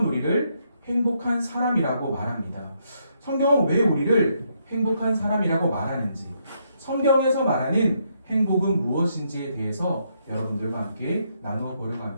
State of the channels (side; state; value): both; inverted; correlation -0.76